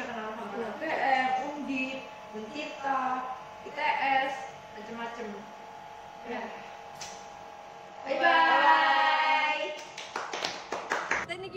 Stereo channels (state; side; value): identical; both; correlation 1.00